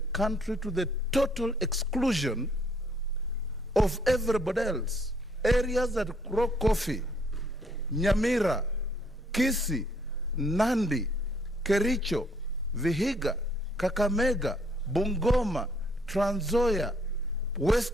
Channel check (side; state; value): both; normal; correlation 0.66